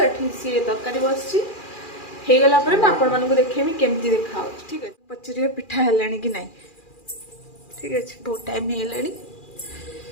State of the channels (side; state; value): right; late; 2.4 ms